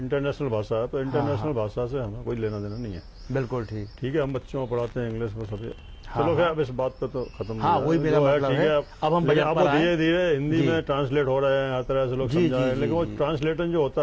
भाषा है, तो इंटरनेशनल भाषा से हमें कोई लेना देना नहीं है। बिल्कुल ठीक है, हम बच्चों को पढ़ाते हैं इंग्लिश में सभी। चलो क्या, अब इस बात पे तो खत्म। हाँ, वही मेरा मतलब है। अब हम धीरे धीरे हिंदी में ट्रांसलेट हो रहे हैं, हर तरह से लोग समझा रहे हैं। लेकिन वो ट्रांसलेशन जो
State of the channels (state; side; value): identical; both; correlation 1.00